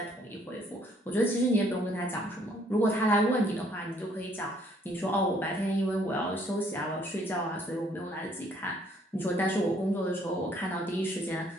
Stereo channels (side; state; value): both; normal; correlation 0.64